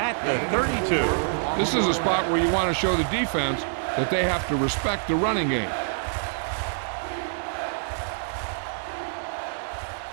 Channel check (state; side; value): silent; left; digital silence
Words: the 32. This is a spot where you want to show the defense that they have to respect the running game.